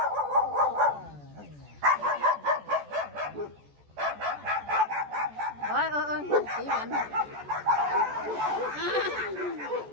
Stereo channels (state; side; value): late; left; 14 ms